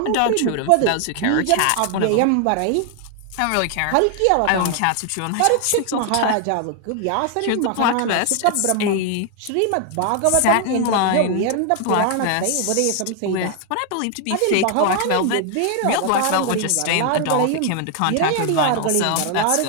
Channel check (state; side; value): different; both; correlation 0.00